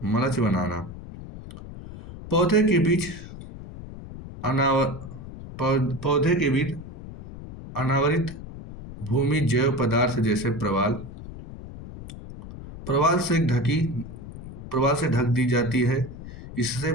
पौधे के बीच अनावरित भूमि जैव पदार्थ जैसे प्रवाल से ढक दी जाती है। इससे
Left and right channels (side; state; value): left; noise; rumble, 13 dB below the sound